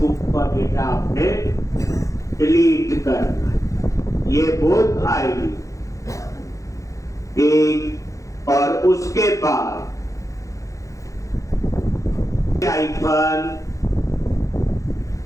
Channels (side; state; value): right; late; 0.15 ms